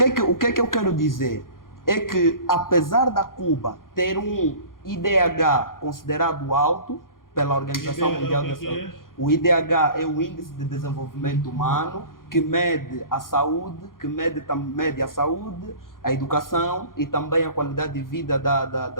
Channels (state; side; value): late; right; 0.91 ms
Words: é que eu quero dizer? É que, apesar da Cuba ter um IDH considerado alto pela Organização Mundial da Saúde, o IDH é o Índice de Desenvolvimento Humano, que mede a saúde, mede a saúde, a educação e também a qualidade de vida